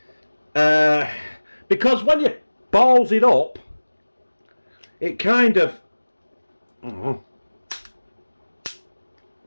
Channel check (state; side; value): inverted; both; correlation -1.00